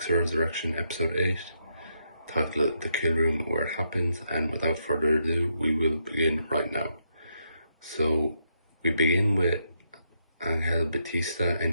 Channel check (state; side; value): inverted; both; correlation -0.79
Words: Resurrection episode 8, titled The Kill Room Where It Happens, and without further ado, we will begin right now. So, we begin with Angel Batista